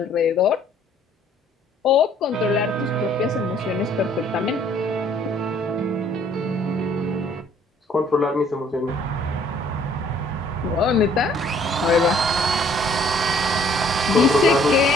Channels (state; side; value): normal; both; correlation 0.59